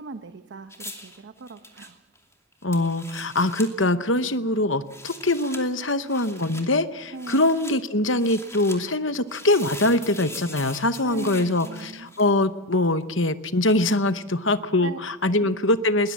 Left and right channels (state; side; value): normal; both; correlation 0.12